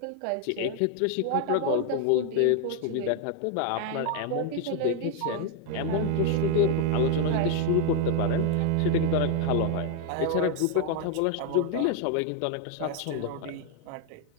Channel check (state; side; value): different; both; correlation 0.00